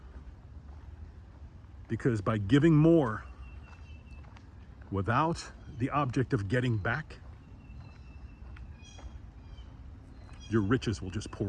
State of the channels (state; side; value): identical; both; correlation 1.00